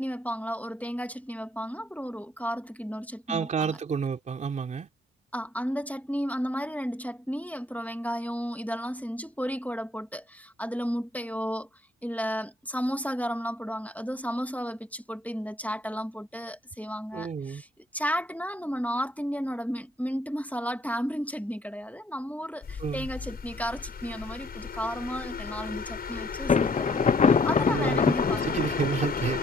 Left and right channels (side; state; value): both; normal; correlation 0.65